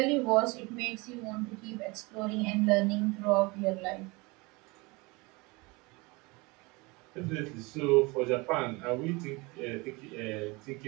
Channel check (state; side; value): quieter; left; 25.6 dB